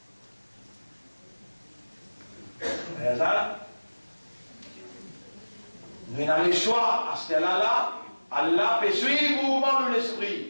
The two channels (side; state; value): both; inverted; correlation -1.00